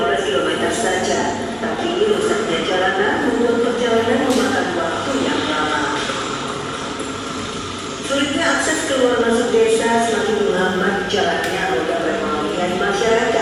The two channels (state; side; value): identical; both; correlation 1.00